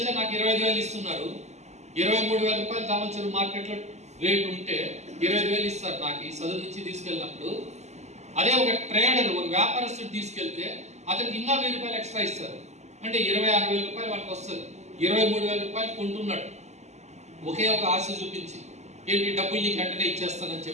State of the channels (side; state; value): left; late; 0.33 ms